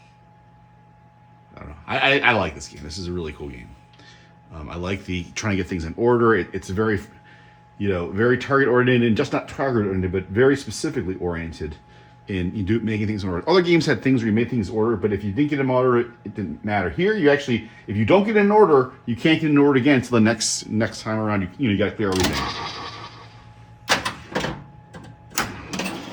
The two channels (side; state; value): both; identical; correlation 1.00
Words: I don't know. I like this game. This is a really cool game. I like the trying to get things in order. It's very, you know, very target oriented, and just not target oriented, but very specifically oriented. And you do making things in order. Other games had things where you made things in order, but if you didn't get them in order, it didn't matter. Here, you actually, if you don't get in order, you can't get in order again until the next time around. You got to clear everything.